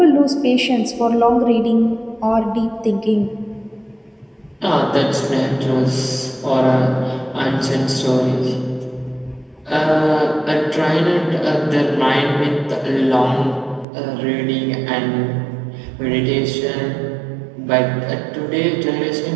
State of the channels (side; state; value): left; drops out; at 13.9 s